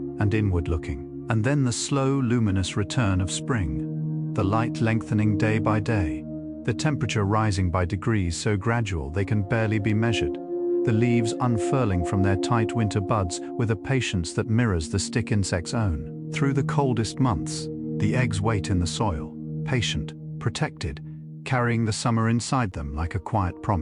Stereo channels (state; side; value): identical; both; correlation 1.00